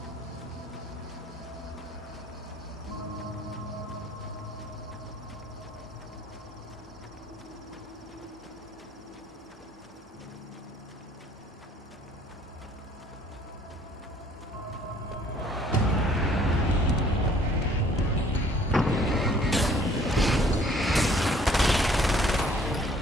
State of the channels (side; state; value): both; normal; correlation 0.58